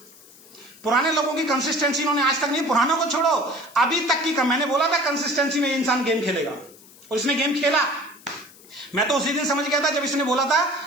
पुराने लोगों की कंसिस्टेंसी इन्होंने आज तक नहीं, पुरानों को छोड़ो, अभी तक की मैंने बोला था कंसिस्टेंसी में इंसान गेम खेलेगा, और इसने गेम खेला। मैं तो उसी दिन समझ गया था जब इसने बोला था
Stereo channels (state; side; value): noise; left; hiss, 23 dB below the sound